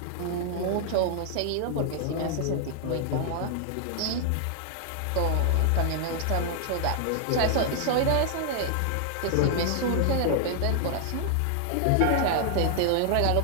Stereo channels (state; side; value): different; both; correlation 0.00